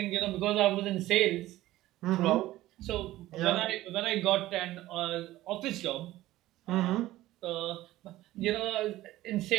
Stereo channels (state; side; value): quieter; left; 16.0 dB